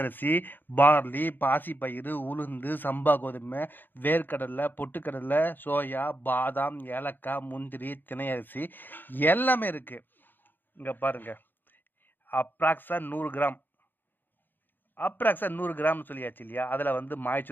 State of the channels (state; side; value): late; right; 0.092 ms